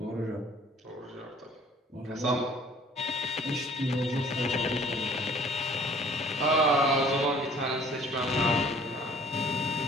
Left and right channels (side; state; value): both; normal; correlation 0.54